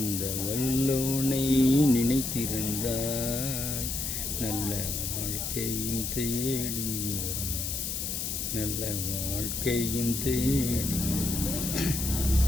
வல்லோனை நினைத்திருந்தால் நல்ல வாழ்க்கையும் தேடி வரும்.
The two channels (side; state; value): left; noise; hiss, 2 dB below the sound